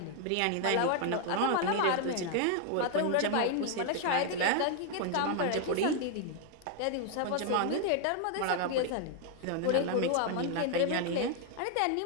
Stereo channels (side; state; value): both; different; correlation 0.00